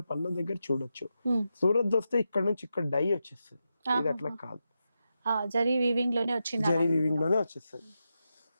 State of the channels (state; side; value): inverted; both; correlation -0.88